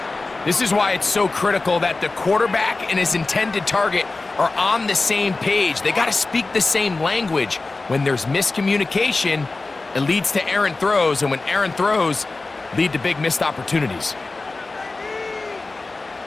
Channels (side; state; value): right; quieter; 3.5 dB